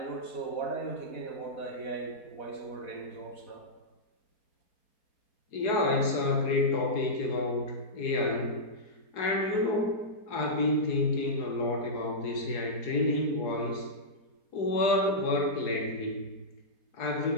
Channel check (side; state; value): right; late; 4.8 ms